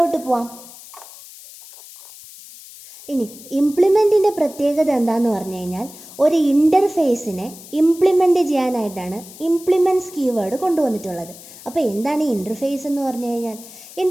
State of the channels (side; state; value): left; noise; hiss, 18 dB below the sound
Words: പോവാം. ഇനി ഇംപ്ലിമെൻറ്റിൻ്റെ പ്രത്യേകത എന്താണെന്ന് പറഞ്ഞു കഴിഞ്ഞാൽ ഒരു ഇൻ്റർഫേസിനെ ഇംപ്ലിമെൻറ്റ് ചെയ്യാനായിട്ടാണ് ഇംപ്ലിമെൻറ്റ്സ് കീവേഡ് കൊണ്ടുവന്നിട്ടുള്ളത്. അപ്പോൾ എന്താണ് ഈ ഇൻ്റർഫേസ് എന്ന് പറഞ്ഞു കഴിഞ്ഞാൽ?